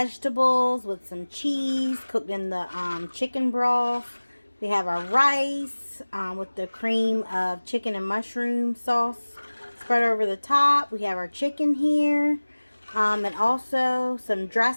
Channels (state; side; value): inverted; both; correlation -1.00